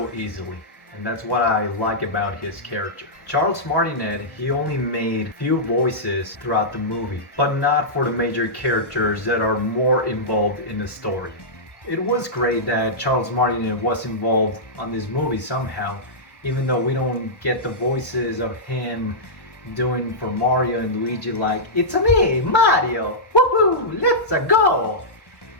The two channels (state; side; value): late; right; 1.1 ms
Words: easily. And that's what I like about his character. Charles Martinet, he only made few voices throughout the movie, but not for the major characters that are more involved in the story. It was great that Charles Martinet was involved on this movie somehow, even though we don't get the voices of him doing for Mario and Luigi like, "It's me, Mario! Woohoo! Let's go!